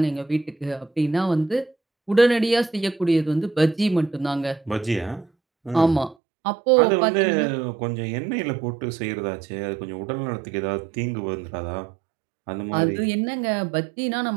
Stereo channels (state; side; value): drops out; left; at 6.2 s